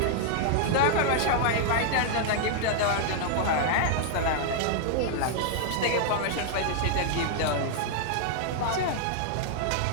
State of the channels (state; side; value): different; both; correlation -0.01